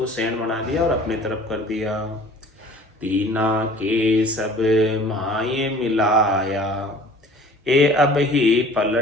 सैन बना दिया और अपने तरफ कर दिया। तीना के सब माये मिलाया, ए अब ही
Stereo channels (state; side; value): normal; both; correlation 0.48